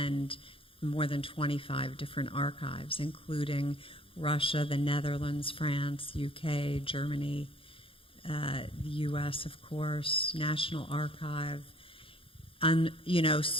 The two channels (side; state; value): right; late; 0.26 ms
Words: more than 25 different archives, including Russia, the Netherlands, France, UK, Germany, the US, of course, National Archive, and,